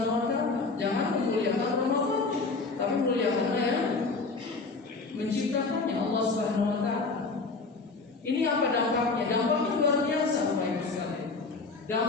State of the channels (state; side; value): quieter; right; 4.0 dB